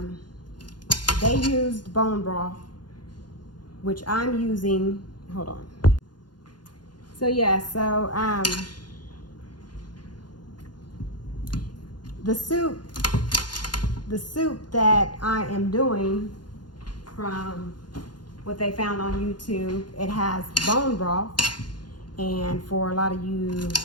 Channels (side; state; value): right; late; 0.70 ms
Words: They used bone broth, which I'm using. Hold on. So yeah, so the soup that I am doing from what they found on YouTube, it has bone broth. And for a lot of you